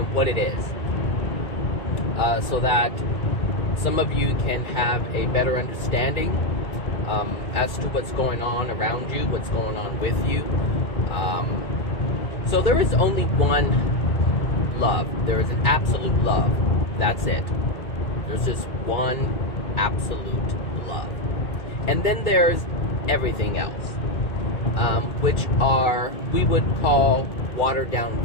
what it is, so that some of you can have a better understanding as to what's going on around you, what's going on with you. So there is only one love. There is an absolute love. That's it. There's just one absolute love. And then there's everything else, which are, we would call watered down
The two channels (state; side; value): late; right; 2.1 ms